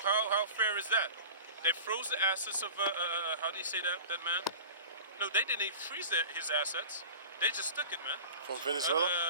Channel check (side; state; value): both; inverted; correlation -0.37